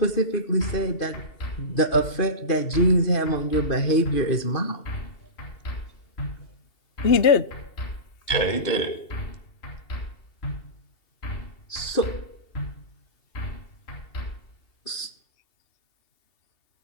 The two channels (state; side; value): late; right; 2.7 ms